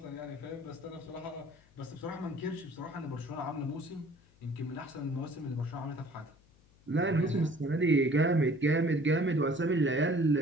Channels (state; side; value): noise; left; hum, 29 dB below the sound